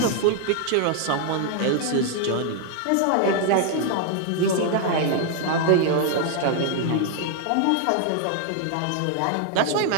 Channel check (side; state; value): both; different; correlation 0.00